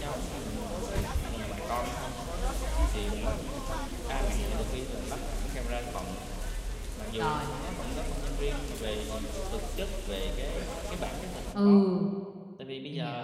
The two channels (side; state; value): both; identical; correlation 1.00